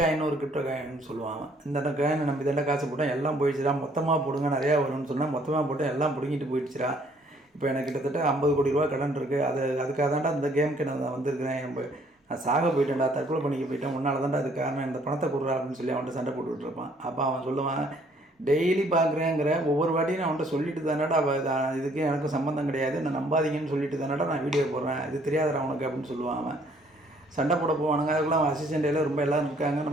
ஒரு கிரிப்டோ காயின்னு சொல்லுவாங்க. இந்த காயினை நம்பி தாண்டா காசு போட்டேன், எல்லாம் போயிடுச்சுடா, மொத்தமாக போடுங்க நிறையா வரும்னு சொன்னால் மொத்தமாக போட்டு எல்லாம் பிடிங்கிட்டு போயிடுச்சுடா. இப்போ எனக்கு கிட்டத்தட்ட 50 கோடி ரூபா கடன் இருக்குது. அதுக்காக தாண்டா இந்த கேமுக்கு நான் வந்திருக்கிறேன். நான் சாக போயிட்டேன்டா, தற்கொலை பண்ணிக்க போயிட்டேன், உன்னால் தாண்டா அது காரணம், இந்த பணத்தை கொடுறா அப்படின்னு சொல்லி அவன்கிட்ட சண்டை போட்டுக்கிட்டு இருப்பான். அப்போ அவன் சொல்லுவான், டெய்லி பார்க்குறேங்கிற ஒவ்வொரு வாட்டியும் நான் அவன்கிட்ட சொல்லிட்டு தானடா இதுக்கு எனக்கு சம்மந்தம் கிடையாது, நான் நம்பாதீங்கன்னு சொல்லிட்டு தானடா நான் வீடியோ போடுறேன், இது தெரியாதடா அவனுக்கு அப்படின்னு சொல்லுவான். அவன் சண்டை போட போவானுங்க. அதுக்குலாம் அவன் அசிஸ்டண்ட்டில் ரொம்ப எல்லோரும் இருக்காங்க,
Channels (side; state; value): both; normal; correlation 0.63